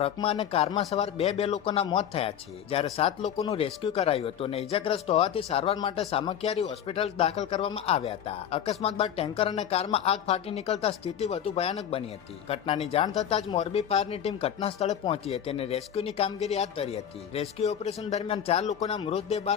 અને કારમાં સવાર 2 લોકોના મોત થયા છે. જ્યારે 7 લોકોનું રેસ્ક્યુ કરાયું હતું અને ઇજાગ્રસ્ત હોવાથી સારવાર માટે સામખિયારી હોસ્પિટલ દાખલ કરવામાં આવ્યા હતા. અકસ્માત બાદ ટેન્કર અને કારમાં આગ ફાટી નીકળતા સ્થિતિ વધુ ભયાનક બની હતી. ઘટનાની જાણ થતાં જ મોરબી ફાયરની ટીમ ઘટના સ્થળે પહોંચી હતી અને રેસ્ક્યુની કામગીરી હાથ ધરી હતી. રેસ્ક્યુ ઓપરેશન દરમિયાન 4 લોકોના મૃતદેહ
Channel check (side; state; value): right; quieter; 9.4 dB